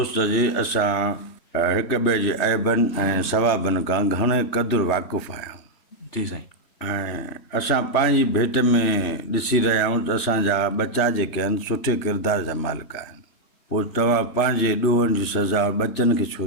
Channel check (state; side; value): late; right; 3.4 ms